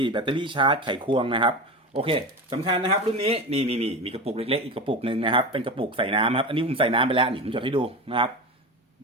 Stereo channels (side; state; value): both; normal; correlation 0.25